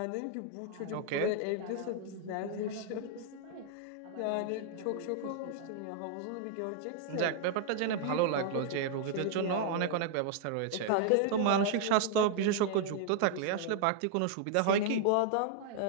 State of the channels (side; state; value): both; different; correlation -0.01